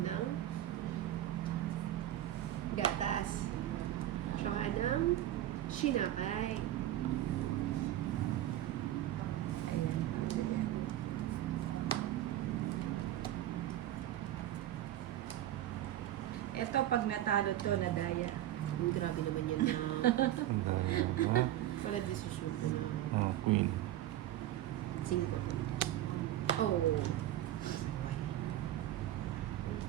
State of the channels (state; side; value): quieter; left; 13.3 dB